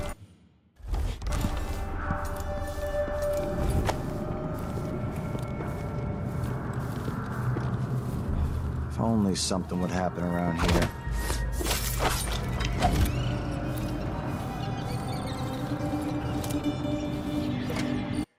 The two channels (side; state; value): both; identical; correlation 1.00